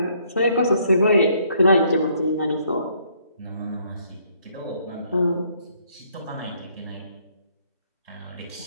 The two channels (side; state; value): both; inverted; correlation -0.67